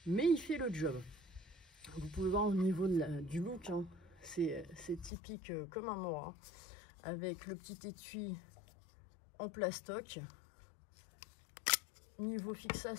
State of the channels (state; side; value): drops out; right; at 5.1 s